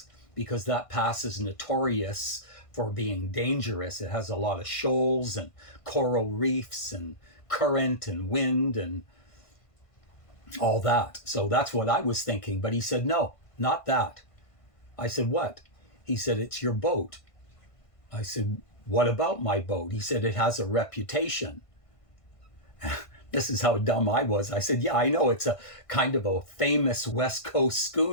because that pass is notorious for being dangerous. It has a lot of shoals and coral reefs and current and wind and all that. So that's what I was thinking. But he said, no, not that. I said, what? He said, it's your boat. I said, what about my boat? He said, it has a reputation. This is how dumb I was. I said, yeah, I know, it's a kind of a famous West Coast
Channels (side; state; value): right; late; 1.5 ms